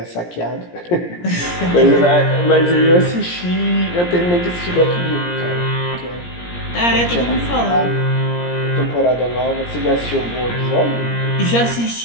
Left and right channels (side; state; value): right; late; 17 ms